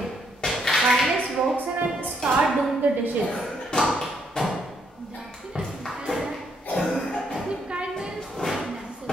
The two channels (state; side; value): normal; both; correlation 0.73